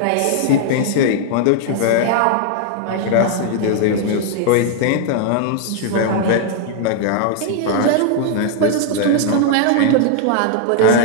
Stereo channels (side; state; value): both; different; correlation 0.00